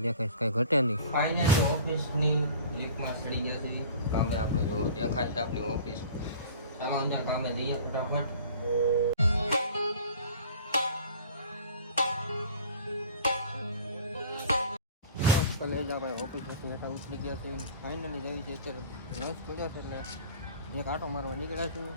દેખાય, કાંઈ ઘટે નહીં. ફાઇનલી ઓફિસની લીફમાં ચડી ગયા છે કામે. આપણે જો દેખાય છે આપણી ઓફિસ. ચાલો અંદર કામે જઈએ ફટાફટ. કલેજા ભાઈ ઓફિસ હેઠા ઉતરી ગયા છે. ફાઇનલી જવી છે અત્યારે રસ પડ્યો છે એટલે એક આટો મારવા નીકળ્યા છું.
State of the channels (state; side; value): inverted; both; correlation -0.44